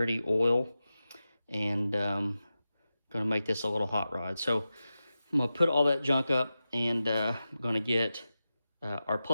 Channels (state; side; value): inverted; both; correlation -0.93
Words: oil, and going to make this a little hot rod. So I'm going to put all that junk up, and I'm going to get our